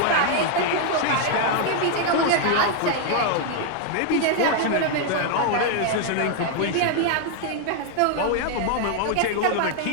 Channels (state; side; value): different; both; correlation 0.00